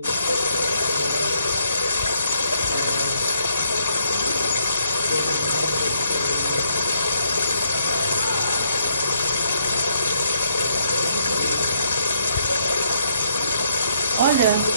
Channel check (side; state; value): both; inverted; correlation -0.70